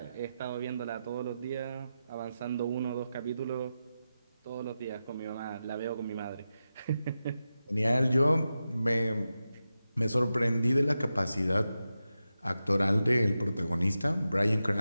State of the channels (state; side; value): inverted; both; correlation -0.91